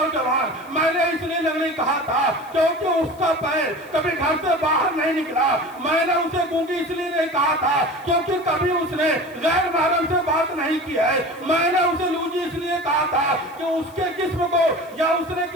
میں نے اس لیے نہیں کہا تھا کیونکہ اس کا پیر کبھی گھر سے باہر نہیں نکلا. میں نے اسے گونگی اس لیے نہیں کہا تھا کیونکہ کبھی اس نے غیر محرم سے بات نہیں کی ہے. میں نے اسے لوجی اس لیے کہا تھا کہ اس کے جسم کو یا اس نے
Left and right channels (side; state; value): left; noise; hiss, 26 dB below the sound